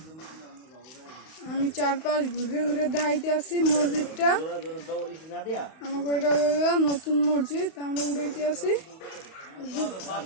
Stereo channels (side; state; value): right; late; 31 ms